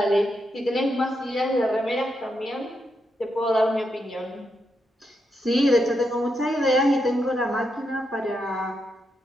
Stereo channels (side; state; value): both; normal; correlation 0.83